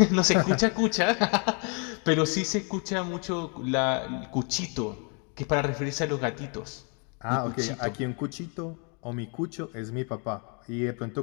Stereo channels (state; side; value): quieter; right; 36.9 dB